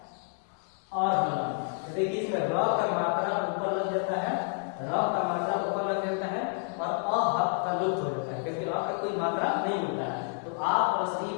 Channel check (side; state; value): right; silent; 58 dB below the other